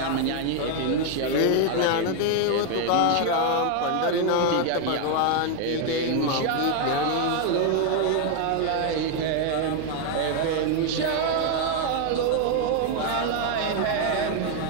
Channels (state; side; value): different; both; correlation 0.01